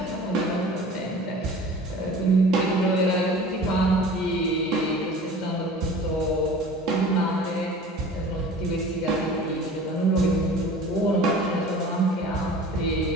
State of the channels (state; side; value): normal; both; correlation 0.42